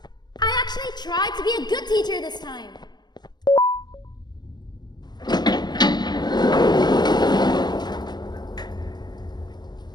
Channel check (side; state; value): right; late; 0.21 ms